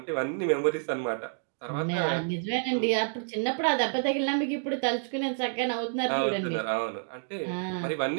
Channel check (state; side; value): silent; left; digital silence